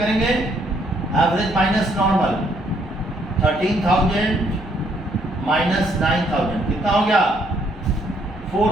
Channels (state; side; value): normal; both; correlation 0.69